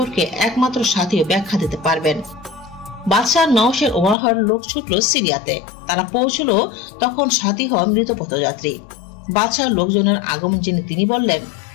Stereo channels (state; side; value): drops out; right; at 4.2 s